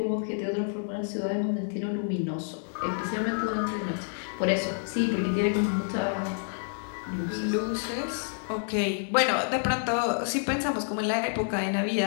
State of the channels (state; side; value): silent; right; digital silence